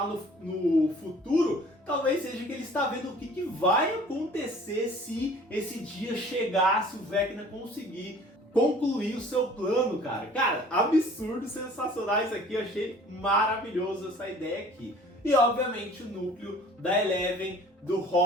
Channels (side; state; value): both; normal; correlation 0.50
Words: no futuro, talvez seja que ele está vendo o que vai acontecer se esse dia chegar, se o Vecna conseguir concluir o seu plano, cara. Cara, absurdo, sensacional isso aqui, eu achei maravilhoso essa ideia aqui. E obviamente o núcleo da Eleven, do